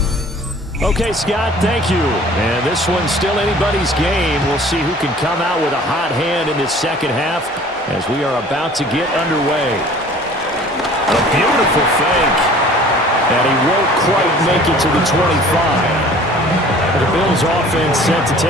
Okay, Scott, thank you. And this one's still anybody's game. We'll see who can come out with a hot hand in this second half as we are about to get underway. A beautiful fake. And he won't quite make it to the 25. The Bills offense set to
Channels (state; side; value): normal; both; correlation 0.49